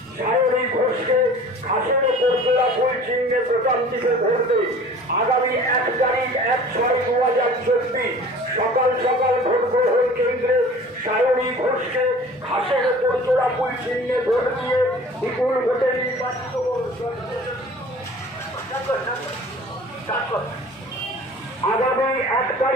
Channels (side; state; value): both; normal; correlation 0.45